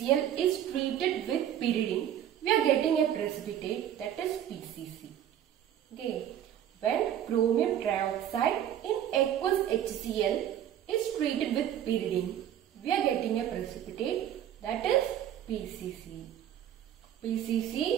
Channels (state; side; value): quieter; left; 10.7 dB